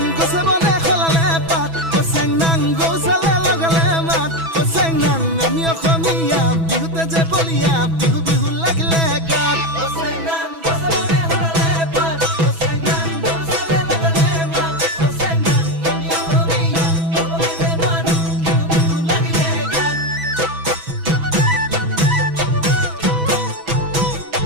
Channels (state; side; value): late; left; 6.1 ms